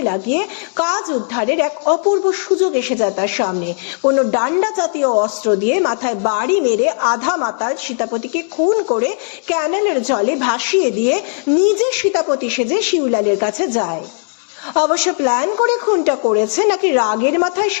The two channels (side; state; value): right; silent; 59 dB below the other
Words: লাগিয়ে কাজ উদ্ধারের এক অপূর্ব সুযোগ এসে যায় তার সামনে। কোনো ডান্ডা জাতীয় অস্ত্র দিয়ে মাথায় বাড়ি মেরে আধা মাতাল সীতাপতিকে খুন করে ক্যানেলের জলে ভাসিয়ে দিয়ে নিজে সীতাপতি সেজে শিউলালের কাছে যায়। অবশ্য প্ল্যান করে খুনটা করেছে নাকি রাগের মাথায়